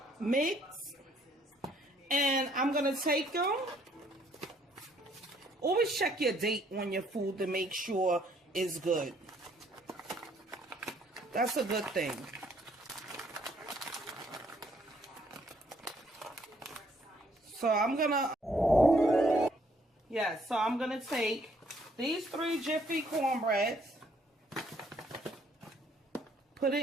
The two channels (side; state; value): both; normal; correlation 0.66